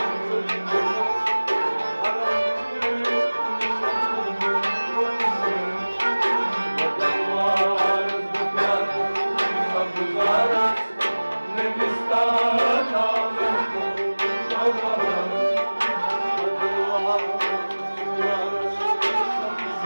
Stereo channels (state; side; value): inverted; both; correlation -1.00